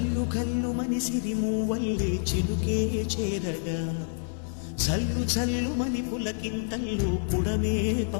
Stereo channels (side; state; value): right; silent; 59 dB below the other